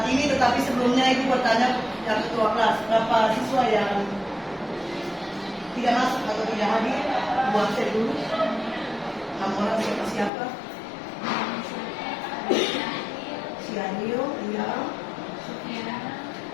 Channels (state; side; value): drops out; right; at 10.3 s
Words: ini, tetapi sebelumnya Ibu bertanya yang ketua kelas, berapa siswa yang tidak masuk atau tidak hadir? Buat saya dulu. 6 orang siapa? Sianio, iya. Sofiana